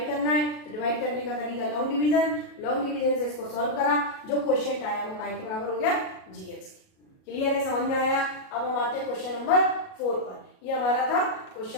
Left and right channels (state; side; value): late; right; 37 ms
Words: करना है, तो डिवाइड करने का तरीका लॉन्ग डिवीजन से इसको सॉल्व करा, जो क्वोशिएंट आया वो काय के बराबर हो गया, जी एक्स। क्लियर है, समझ में आया। अब हम आते हैं क्वेश्चन नंबर 4 पर। ये हमारा था